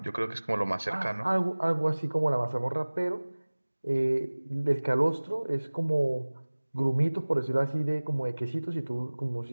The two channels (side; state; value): both; inverted; correlation -1.00